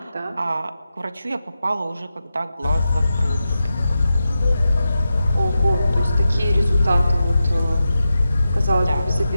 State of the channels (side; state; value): both; inverted; correlation -0.91